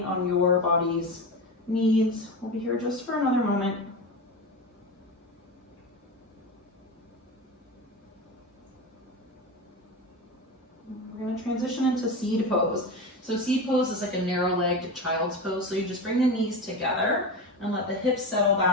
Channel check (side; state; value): both; normal; correlation 0.23